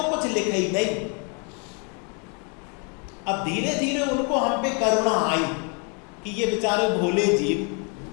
कुछ लिखे ही नहीं। अब धीरे धीरे उनको हम पे करुणा आई कि ये बेचारे भोले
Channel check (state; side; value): quieter; right; 36.1 dB